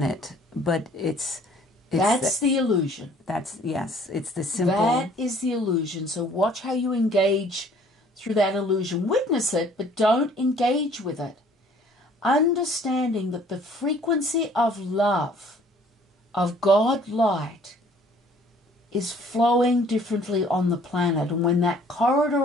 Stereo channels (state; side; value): normal; both; correlation 0.56